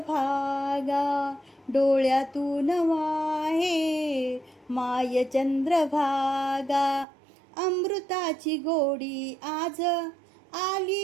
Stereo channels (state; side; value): drops out; left; at 7.1 s